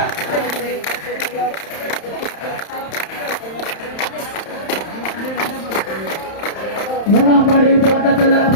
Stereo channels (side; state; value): right; late; 31 ms